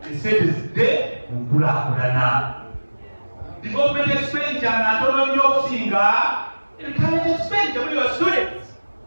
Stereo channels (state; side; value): inverted; both; correlation -1.00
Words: esente zidde mu nkulaakulana. Development expenditure natono nnyo okusinga recurrent expenditure muri your students.